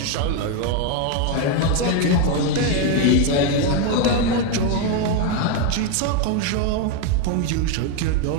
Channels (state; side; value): different; both; correlation 0.02